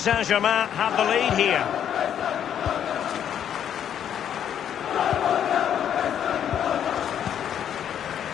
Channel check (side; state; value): right; quieter; 9.5 dB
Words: have the lead here.